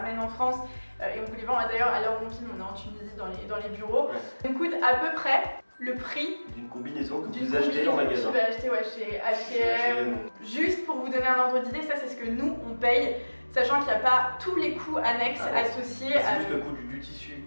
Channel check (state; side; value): inverted; both; correlation -1.00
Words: en France. Et on vous les vend d'ailleurs à l'heure où on filme, on est en Tunisie dans les bureaux. Ça coûte à peu près le prix d'une combinaison que vous achetez en magasin. Tu vas acheter chez H&M. Juste pour vous donner un ordre d'idée, ça c'est ce que nous on paye, sachant qu'il n'y a pas tous les coûts annexes associés. C'est juste le coût du tissu,